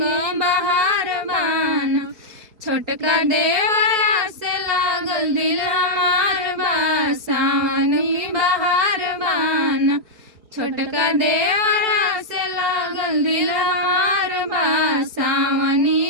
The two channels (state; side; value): late; left; 4.6 ms